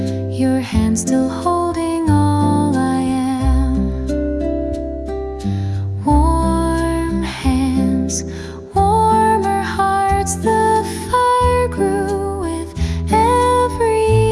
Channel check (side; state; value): both; identical; correlation 1.00